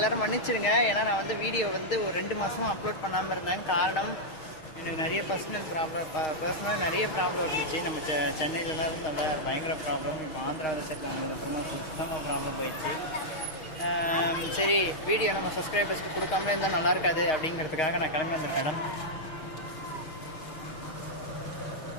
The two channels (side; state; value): right; late; 6.4 ms